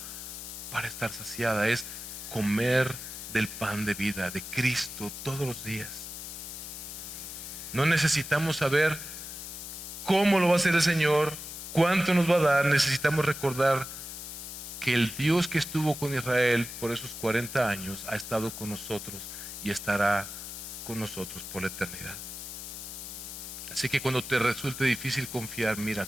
para estar saciada, es comer del pan de vida, de Cristo todos los días. No necesitamos saber cómo lo va a hacer el Señor, cuánto nos va a dar, necesitamos recordar que el Dios que estuvo con Israel por esos 40 años ha estado con nosotros y estará con nosotros por la eternidad. Así que cuando te resulte difícil confiar, mira a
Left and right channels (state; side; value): noise; left; hiss, 9 dB below the sound